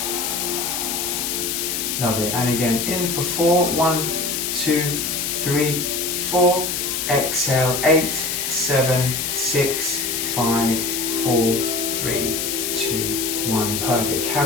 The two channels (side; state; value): left; noise; hiss, 1 dB below the sound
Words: Lovely. And again, in for 4, 1, 2, 3, 4. Exhale, 8, 7, 6, 5, 4, 3, 2, 1. Perfect.